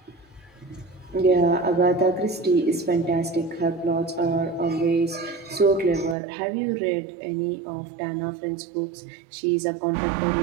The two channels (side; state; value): left; drops out; at 6.2 s